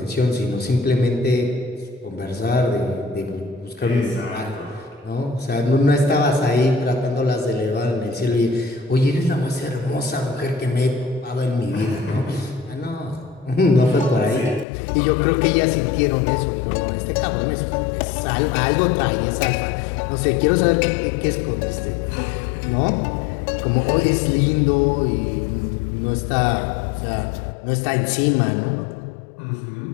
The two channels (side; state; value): right; drops out; at 14.7 s